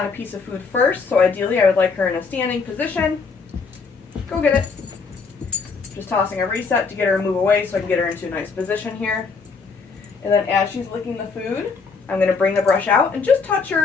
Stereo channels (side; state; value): right; quieter; 4.9 dB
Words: a piece of food first. So ideally I would like her in a standing position. Go get it. Just tossing a reset to get her to move away so I can get her into a nice position here. And then as she's licking the food, I'm going to bring the brush out and just touch